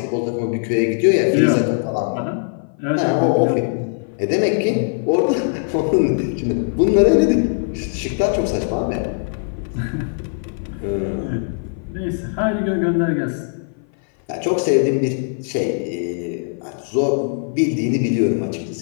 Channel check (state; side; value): silent; right; 56 dB below the other